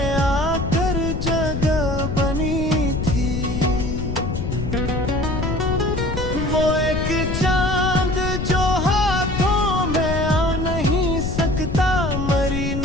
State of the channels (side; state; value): left; noise; rumble, 3 dB below the sound